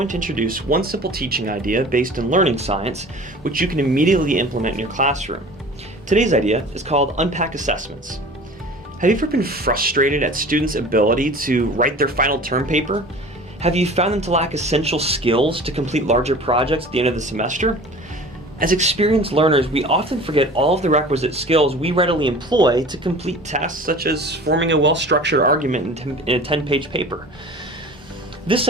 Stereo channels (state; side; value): normal; both; correlation 0.41